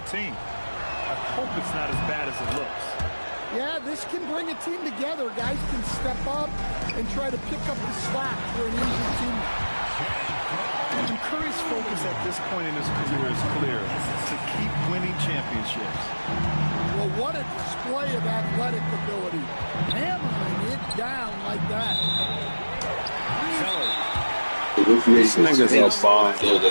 team. I hope it's not as bad as it looks. Yeah, this can bring a team together. Guys can step up and try to pick up the slack for an injured team. And Curry's focus at this point in his career is clear: to keep winning championships. Well, what a display of athletic ability. Hammering it down like that. These niggas are bomb.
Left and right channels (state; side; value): inverted; both; correlation -1.00